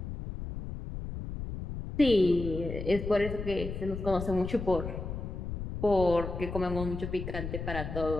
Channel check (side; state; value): left; noise; rumble, 6 dB below the sound